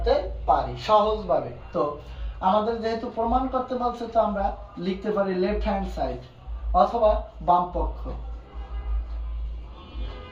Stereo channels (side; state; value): both; identical; correlation 1.00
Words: পারি সহজভাবে। তো আমাদের যেহেতু প্রমাণ করতে বলছে, তো আমরা লিখতে পারি লেফট হ্যান্ড সাইড অথবা বাম পক্ষ।